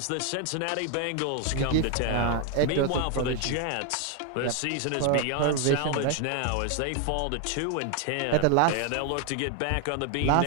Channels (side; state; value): both; different; correlation 0.01